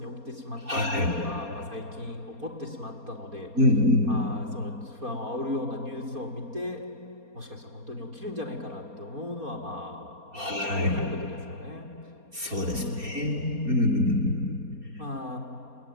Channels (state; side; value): late; left; 4.3 ms